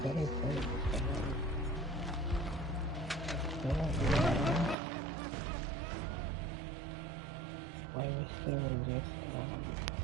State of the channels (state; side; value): drops out; left; at 4.8 s